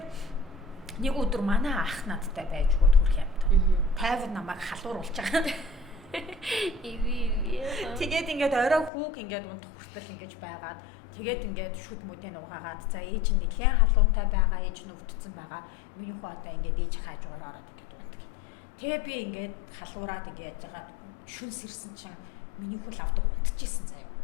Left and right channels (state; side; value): drops out; right; at 8.9 s